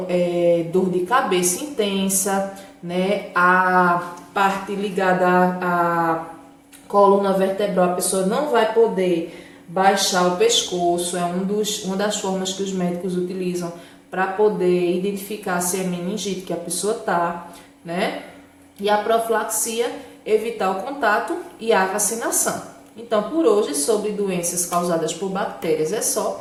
dor de cabeça intensa, né? A parte ligada à coluna vertebral, a pessoa não vai poder baixar o pescoço, é uma das formas que os médicos utilizam para poder identificar se é meningite que a pessoa tá, né? E a profilaxia, evitar o contato e a vacinação. Então, por hoje, sobre doenças causadas por bactérias é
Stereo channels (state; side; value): identical; both; correlation 1.00